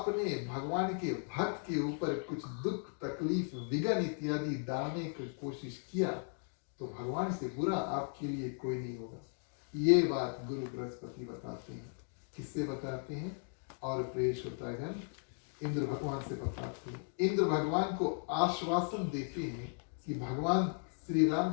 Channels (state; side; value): silent; right; 53 dB below the other